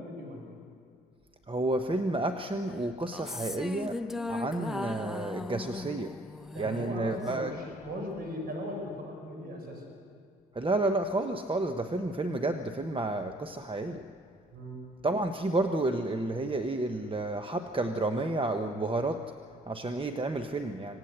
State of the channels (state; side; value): normal; both; correlation 0.61